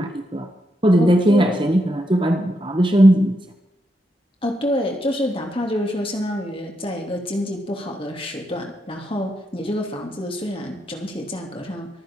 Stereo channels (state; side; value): normal; both; correlation 0.82